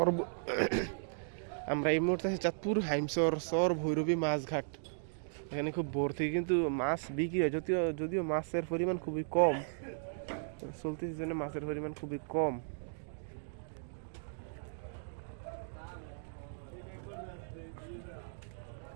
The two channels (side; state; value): left; silent; digital silence